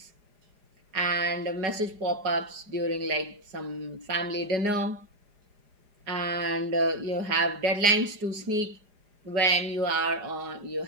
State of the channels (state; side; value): late; left; 4.9 ms